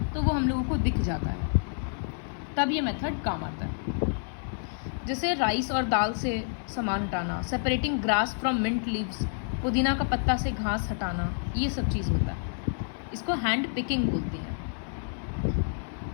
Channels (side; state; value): right; silent; 59 dB below the other